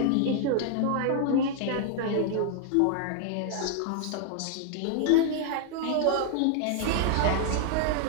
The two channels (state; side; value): different; both; correlation -0.01